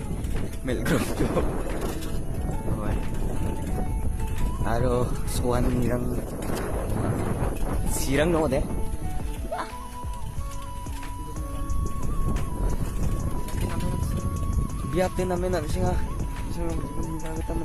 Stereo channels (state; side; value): identical; both; correlation 1.00